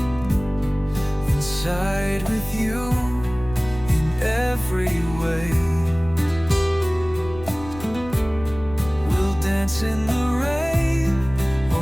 Inside with you in every way. We'll dance in the rain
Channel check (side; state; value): left; noise; rumble, 14 dB below the sound